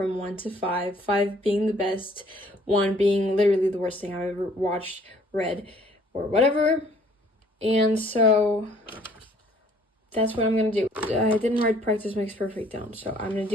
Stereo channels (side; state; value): both; normal; correlation 0.59